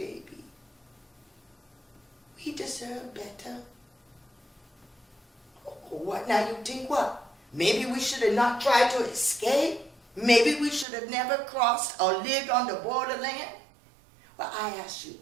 We deserve better. What now, you think what? Maybe we should have not tried to escape? Maybe we should have never crossed or lived on the borderland? Well, I ask you,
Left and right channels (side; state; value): left; drops out; at 10.9 s